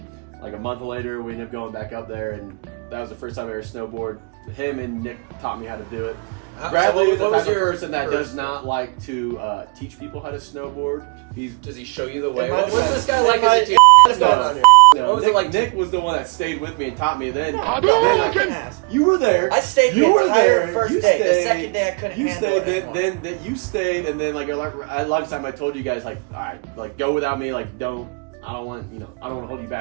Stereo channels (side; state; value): left; quieter; 33.7 dB